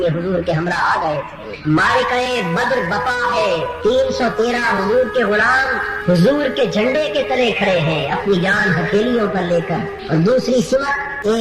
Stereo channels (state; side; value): identical; both; correlation 1.00